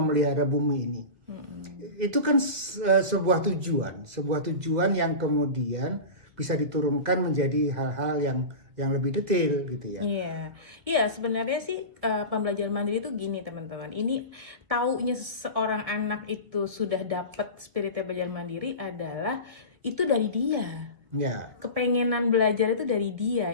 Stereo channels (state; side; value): late; left; 2.0 ms